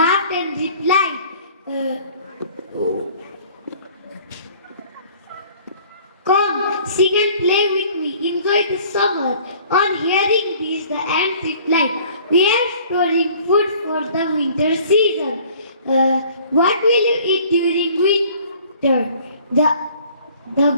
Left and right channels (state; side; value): inverted; both; correlation -0.52